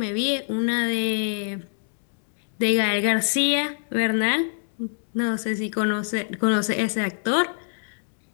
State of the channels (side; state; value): right; silent; digital silence